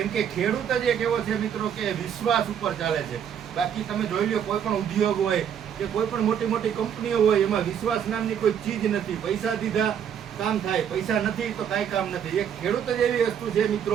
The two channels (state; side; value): quieter; left; 8.6 dB